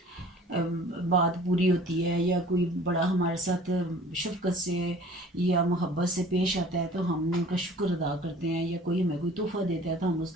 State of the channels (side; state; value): both; normal; correlation 0.48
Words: बात पूरी होती है, या कोई बड़ा हमारे साथ शफ़क़त से या मोहब्बत से पेश आता है, तो हम उनका शुक्र अदा करते हैं, या कोई हमें कोई तोहफ़ा देता है तो हम